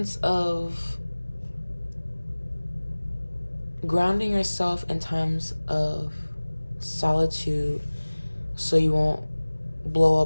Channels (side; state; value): both; inverted; correlation -1.00